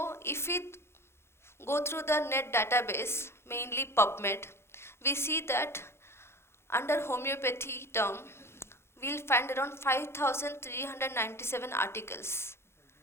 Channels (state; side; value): late; right; 0.12 ms